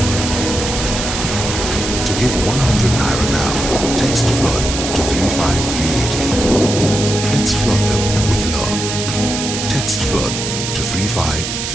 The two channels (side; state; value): right; noise; hiss, 4 dB below the sound